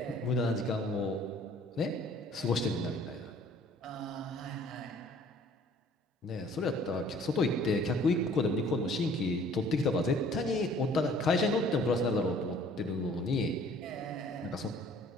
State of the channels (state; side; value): normal; both; correlation 0.54